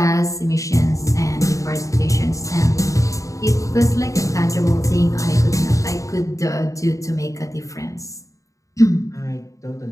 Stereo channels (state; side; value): late; right; 0.16 ms